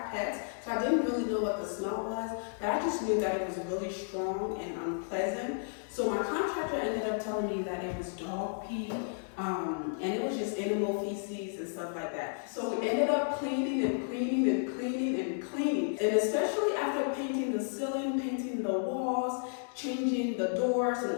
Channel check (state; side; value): silent; right; digital silence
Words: pets, so I didn't really know what the smell was, but I just knew that it was really strong and unpleasant. So my contractor ended up telling me that it was dog pee, and it was just animal feces and stuff like that. So we ended up cleaning and cleaning and cleaning and cleaning. And especially after painting the ceiling, painting the walls, changing the doors